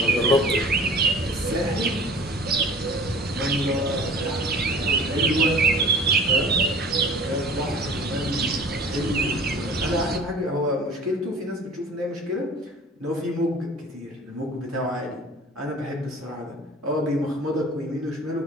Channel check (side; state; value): both; normal; correlation 0.44